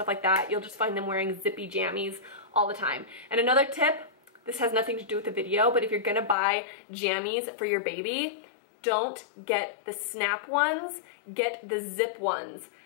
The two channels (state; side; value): drops out; right; at 6.4 s